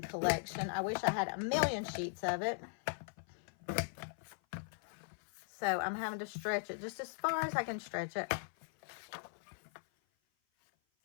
collection. I wish I had a million sheets of it. So I'm having to stretch it just as far as I can stretch it.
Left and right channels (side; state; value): right; silent; 52 dB below the other